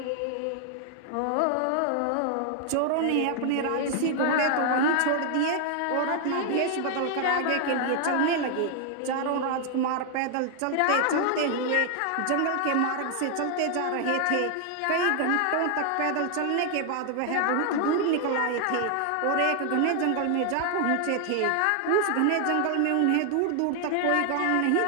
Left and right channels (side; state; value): both; different; correlation 0.00